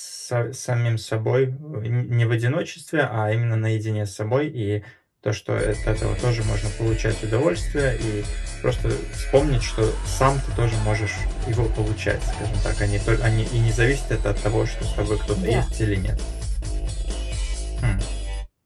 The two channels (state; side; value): identical; both; correlation 1.00